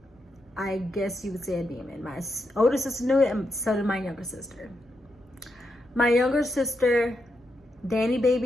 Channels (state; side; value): normal; both; correlation 0.83